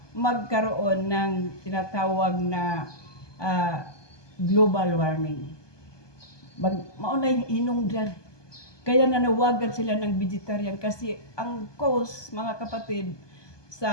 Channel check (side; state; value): right; late; 1.2 ms